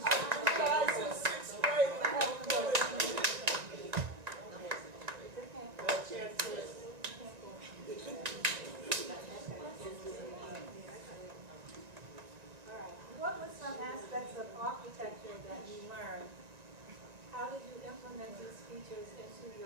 What were some aspects of architecture that you learned? How did you implement these features into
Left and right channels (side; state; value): left; late; 1.9 ms